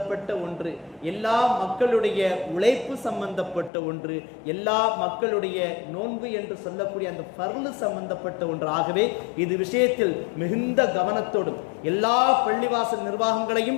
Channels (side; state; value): right; drops out; at 3.7 s